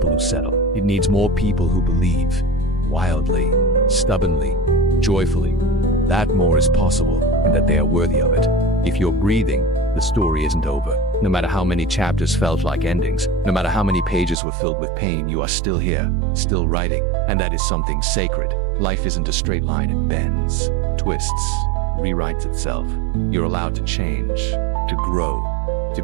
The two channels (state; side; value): drops out; left; at 14.4 s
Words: who settle. It needs more people who believe, wildly, stubbornly, joyfully, that more is possible and that they are worthy of it. If you're breathing, the story isn't over. No matter how many chapters felt like endings, no matter how many pages were filled with pain, you are still here, still writing, and that is something sacred. Life isn't a straight line. It bends, twists, rewrites itself. You're allowed to change, to grow, to